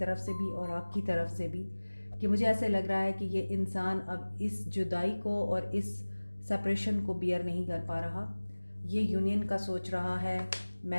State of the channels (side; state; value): both; inverted; correlation -1.00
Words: से भी और आपकी तरफ से भी, कि मुझे ऐसे लग रहा है कि ये इंसान अब इस जुदाई को और इस सेपरेशन को बियर नहीं कर पा रहा। ये यूनियन का सोच रहा है,